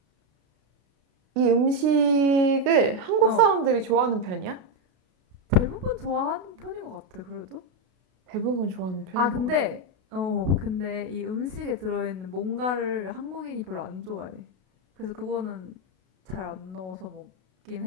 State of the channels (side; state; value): left; late; 32 ms